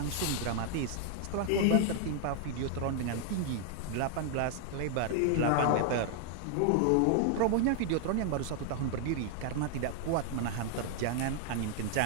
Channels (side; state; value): both; different; correlation 0.00